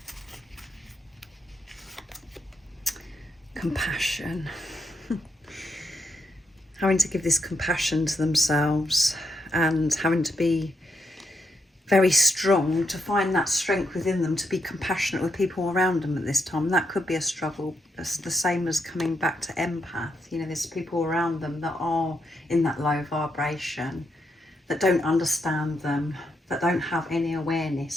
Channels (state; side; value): normal; both; correlation 0.80